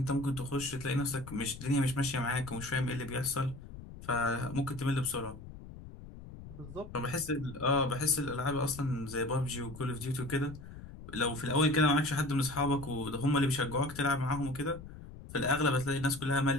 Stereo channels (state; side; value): noise; left; rumble, 14 dB below the sound